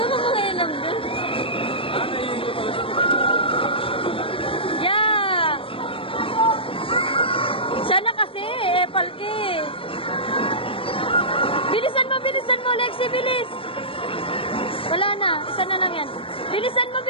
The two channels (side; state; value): right; late; 0.26 ms